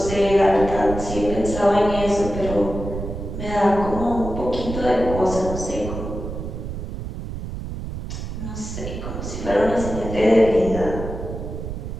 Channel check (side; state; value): right; noise; rumble, 7 dB below the sound